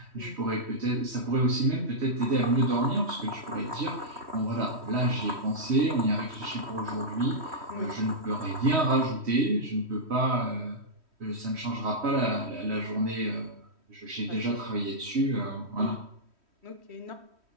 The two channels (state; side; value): late; left; 3.1 ms